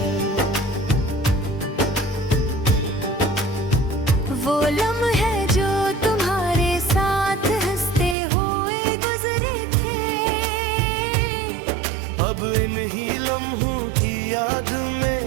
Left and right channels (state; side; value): drops out; left; at 8.2 s